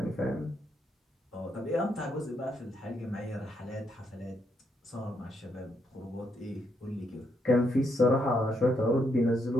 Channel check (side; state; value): both; normal; correlation 0.77